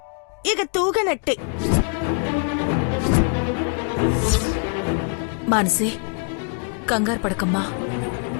ఇక తూగనట్టే. మానసి కంగారు పడకమ్మా,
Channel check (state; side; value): quieter; right; 39.3 dB